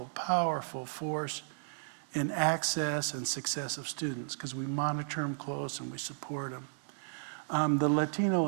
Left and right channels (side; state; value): left; silent; digital silence